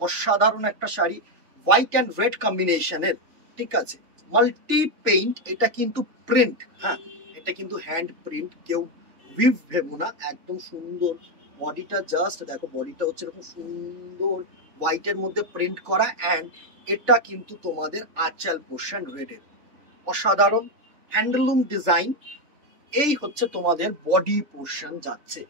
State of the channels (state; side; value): late; left; 3.5 ms